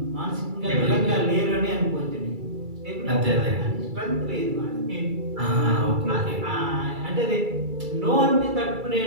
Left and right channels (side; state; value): left; late; 2.3 ms